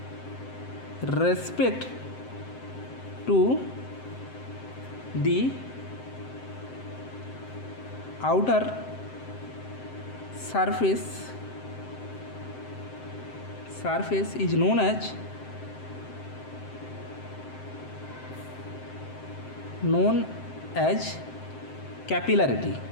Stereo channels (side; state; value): right; late; 7.7 ms